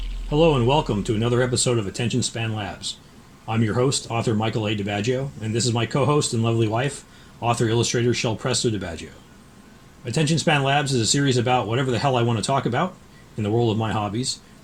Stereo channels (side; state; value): both; identical; correlation 1.00